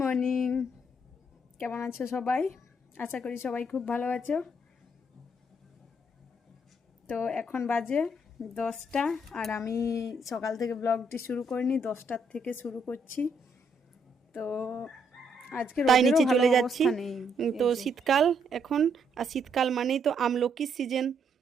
মর্নিং, কেমন আছো সবাই? আশা করি সবাই খুব ভালো আছো। তো এখন বাজে 10টা, আর আমি সকাল থেকে ব্লগটি শুরু করিনি, 10টার থেকে শুরু করছি। তো আজকে তাই রোদেরও নিচে ভালো চলে যাচ্ছি। অবস্থা নেই। তো এই যে শীতকাল এখন, আর শীতকাল মানেই তো আমলকির সিজন।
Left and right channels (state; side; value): normal; both; correlation 0.73